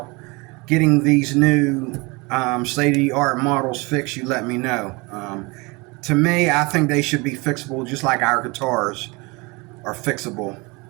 getting these new state-of-the-art models fixed, you let me know. To me, I think they should be fixable just like our guitars are fixable.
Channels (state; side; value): quieter; left; 26.2 dB